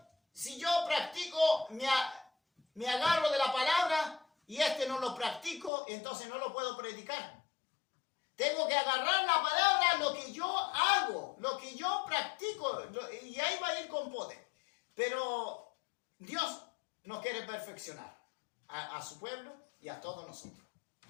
si yo practico, me agarro de la palabra y no lo practico, entonces no lo puedo predicar. Tengo que agarrar la palabra, lo que yo hago, lo que yo practico, y ahí va a ir con poder. Pero Dios nos quiere perfeccionar a su pueblo y a todos nosotros.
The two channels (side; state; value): right; drops out; at 5.7 s